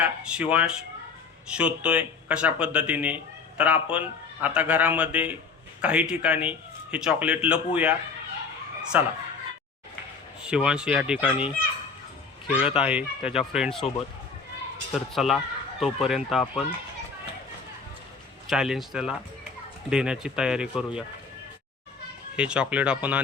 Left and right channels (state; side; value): quieter; right; 5.0 dB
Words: शिवांश शोधतोय कशा पद्धतीने. तर आपण आता घरामध्ये काही ठिकाणी हे चॉकलेट लपवूया. चला. शिवांश या ठिकाणी खेळत आहे त्याच्या फ्रेंडसोबत. तर चला, तोपर्यंत आपण चॅलेंज त्याला देण्याची तयारी करूया. हे चॉकलेट आपण